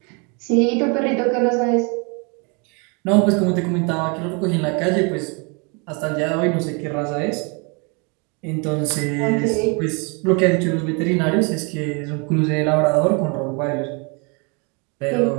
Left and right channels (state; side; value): quieter; left; 32.8 dB